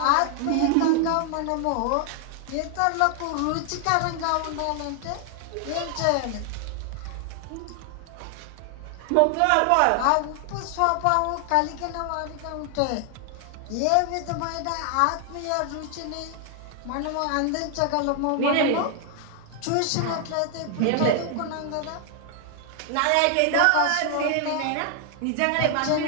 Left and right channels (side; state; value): both; different; correlation 0.00